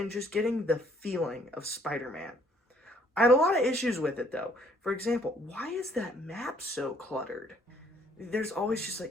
just getting the feeling of Spider-Man. I had a lot of issues with it, though. For example, why is that map so cluttered? There's always just,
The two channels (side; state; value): both; normal; correlation 0.63